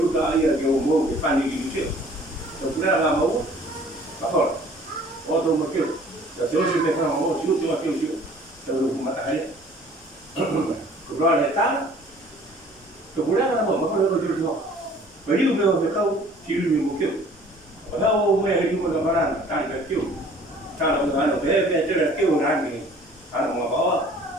tay là kiểu mua cái phần gì chút xíu rồi chúng ta làm mẫu bắt thôi ô tô mà kêu là chỗ gì về phòng mẫu xíu cho kêu xíu rồi dùng mặt tay rồi lại tá rồi cũng đã mở mất rồi chưa bởi vì bây giờ phải không chỉ dùng một kiểu ở đâu mẹ đi mà các bạn đang cái kiểu sao là người ta thế chứ là kiểu này thì ăn mà có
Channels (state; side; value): normal; both; correlation 0.52